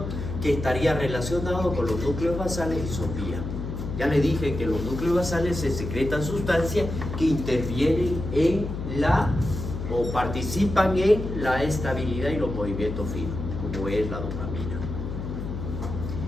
que estaría relacionado con los núcleos basales y sopía. Ya le dije que los núcleos basales se secretan sustancias que intervienen en o participan en la estabilidad y los movimientos finos, como es la dopamina.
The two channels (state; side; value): noise; left; hum, 6 dB below the sound